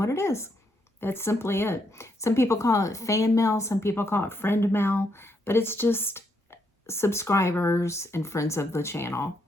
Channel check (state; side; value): normal; both; correlation 0.76